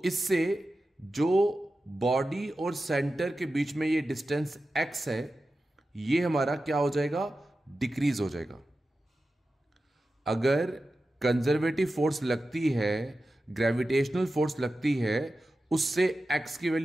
इससे जो बॉडी और सेंटर के बीच में ये डिस्टेंस x है, ये हमारा क्या हो जाएगा? डिक्रीज हो जाएगा। अगर कंजर्वेटिव फोर्स लगती है, ग्रेविटेशनल फोर्स लगती है, उससे x की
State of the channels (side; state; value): both; normal; correlation 0.93